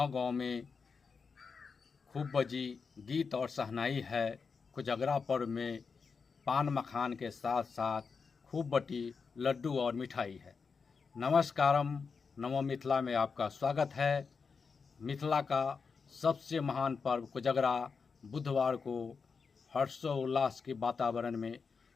में खूब बजी गीत और शहनाई है। कोजगरा पर्व में पान मखान के साथ साथ खूब बटी लड्डू और मिठाई है। नमस्कारम, नमो मिथिला में आपका स्वागत है। मिथिला का सबसे महान पर्व कोजगरा बुधवार को हर्षोल्लास के वातावरण में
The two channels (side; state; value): right; quieter; 5.3 dB